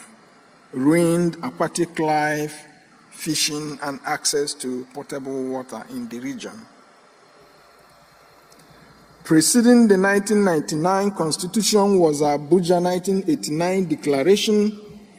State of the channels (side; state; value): both; identical; correlation 1.00